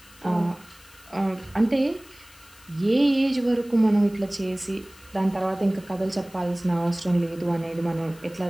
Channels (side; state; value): left; noise; hiss, 24 dB below the sound